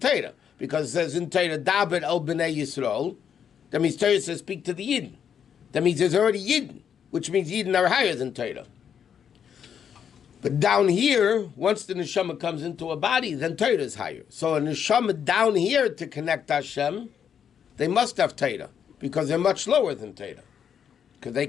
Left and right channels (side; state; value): right; quieter; 8.1 dB